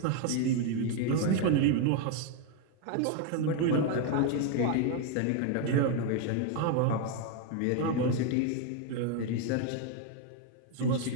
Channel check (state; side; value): different; both; correlation 0.01